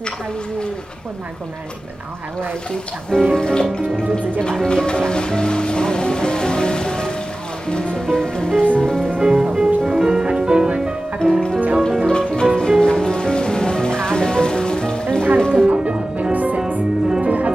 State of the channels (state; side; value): normal; both; correlation 0.96